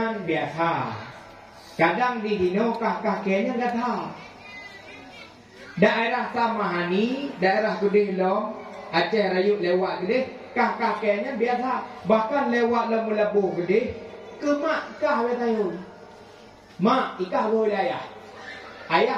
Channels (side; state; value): both; identical; correlation 1.00